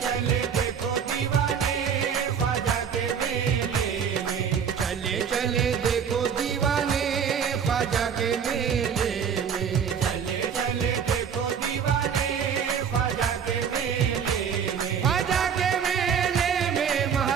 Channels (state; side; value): quieter; left; 7.4 dB